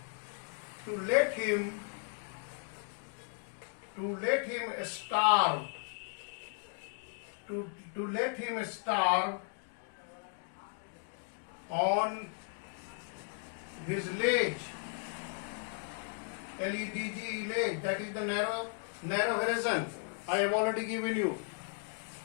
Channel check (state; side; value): silent; right; 54 dB below the other